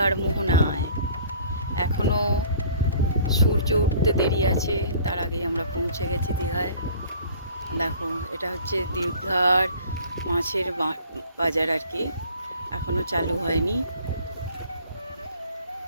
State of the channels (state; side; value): inverted; both; correlation -0.50